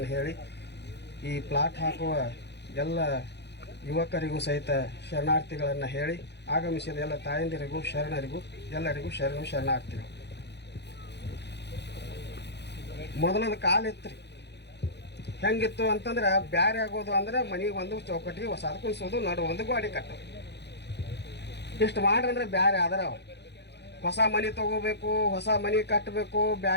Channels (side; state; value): right; late; 0.50 ms